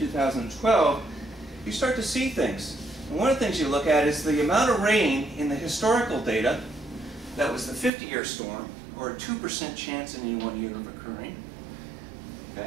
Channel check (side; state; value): left; drops out; at 7.9 s